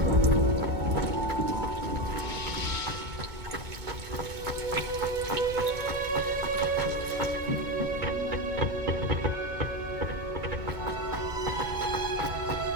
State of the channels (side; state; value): left; late; 2.2 ms